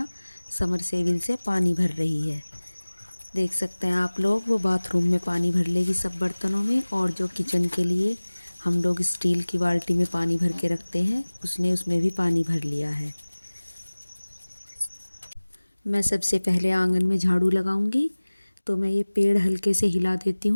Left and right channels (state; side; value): inverted; both; correlation -1.00